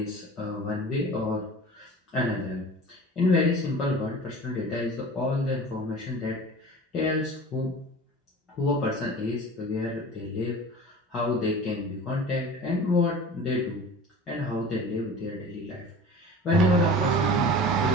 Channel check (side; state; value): both; normal; correlation 0.38